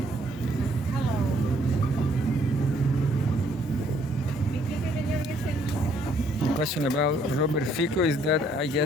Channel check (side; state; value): both; normal; correlation 0.66